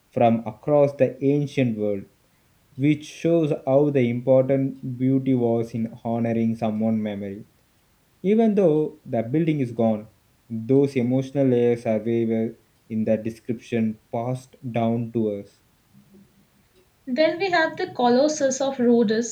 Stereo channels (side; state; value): both; identical; correlation 1.00